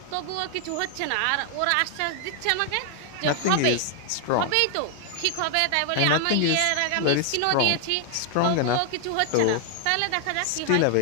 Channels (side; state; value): both; different; correlation 0.00